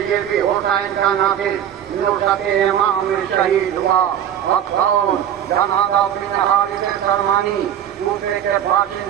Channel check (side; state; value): left; quieter; 10.1 dB